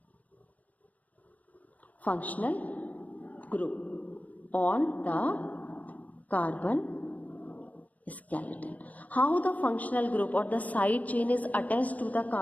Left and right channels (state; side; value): late; right; 0.075 ms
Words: functional group on the carbon skeleton. How the functional group or the side chain is attached to the